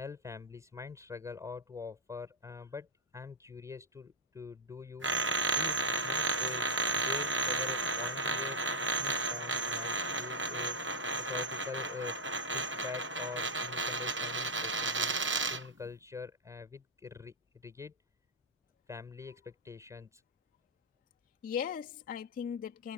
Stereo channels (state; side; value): normal; both; correlation -0.02